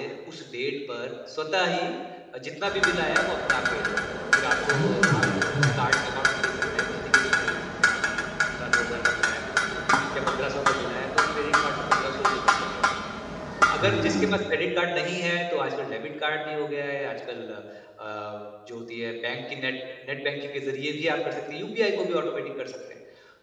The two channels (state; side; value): identical; both; correlation 1.00